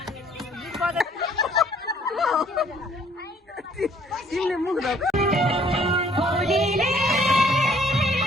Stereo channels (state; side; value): normal; both; correlation 0.60